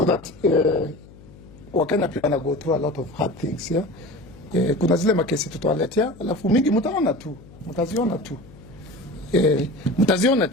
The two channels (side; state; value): left; noise; hum, 21 dB below the sound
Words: that Wakenya pia wana go through a lot of hard things, yeah? Kuna zile makesi tutawaletea, alafu mingi mtaziona